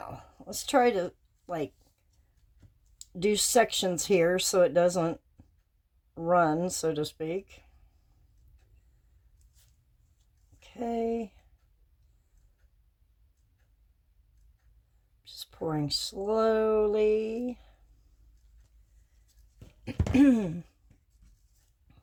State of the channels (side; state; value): both; identical; correlation 1.00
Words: let's try to like do sections here so it doesn't run, so to speak. Okay. Just pouring slowly. Get